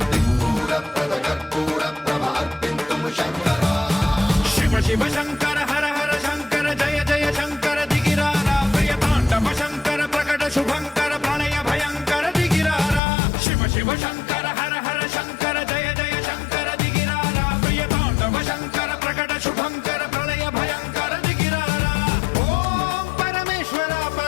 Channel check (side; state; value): right; drops out; at 13.0 s